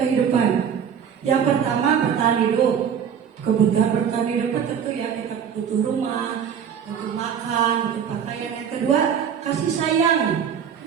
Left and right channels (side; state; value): left; quieter; 7.9 dB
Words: Yang pertama, bertahan hidup. Kebutuhan bertahan hidup tentu ya, kita butuh rumah, butuh makan, butuh pakaian. Yang kedua, kasih sayang,